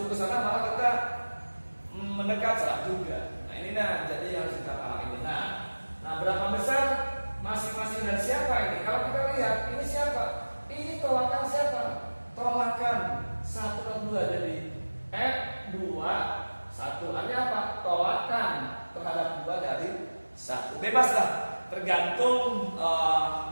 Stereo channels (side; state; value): both; inverted; correlation -1.00